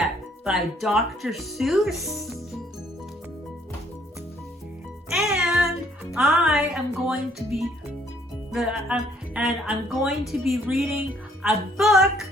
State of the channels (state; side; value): normal; both; correlation 0.64